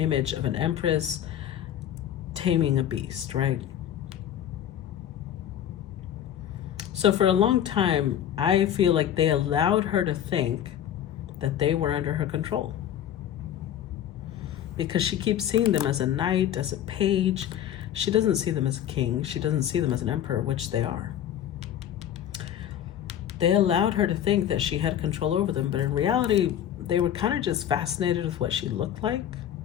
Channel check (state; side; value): quieter; right; 10.6 dB